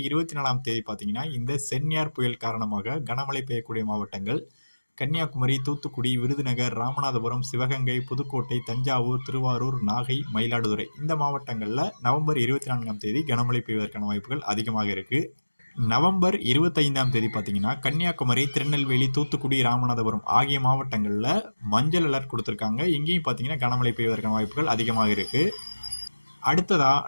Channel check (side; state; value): both; inverted; correlation -1.00